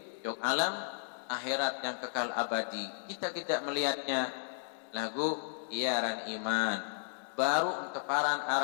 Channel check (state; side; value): silent; right; digital silence